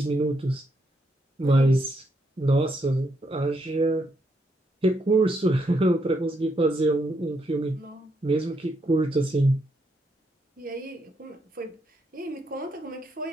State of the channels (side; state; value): both; normal; correlation 0.78